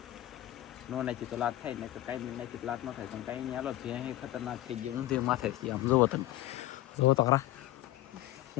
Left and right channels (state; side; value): quieter; right; 15.3 dB